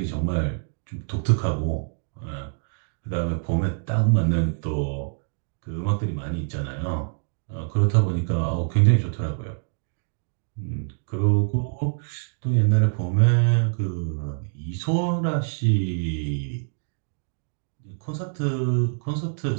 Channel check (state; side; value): silent; left; digital silence